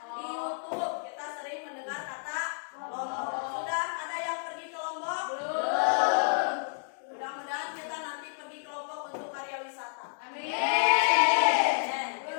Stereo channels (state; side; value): silent; right; digital silence